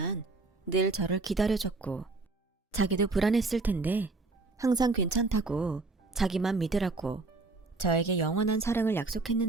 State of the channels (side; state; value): left; quieter; 3.5 dB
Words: 늘 저를 기다려줬고 자기도 불안했을 텐데 항상 괜찮다고 자기만 믿으라고 저에게 영원한 사랑을